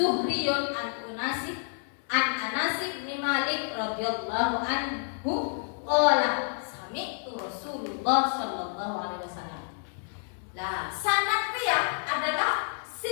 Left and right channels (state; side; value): silent; right; 56 dB below the other